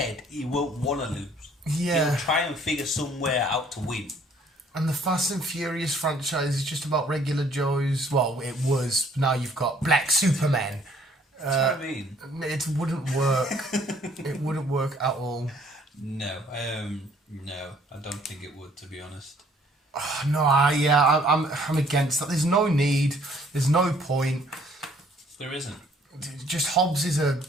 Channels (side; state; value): both; normal; correlation 0.60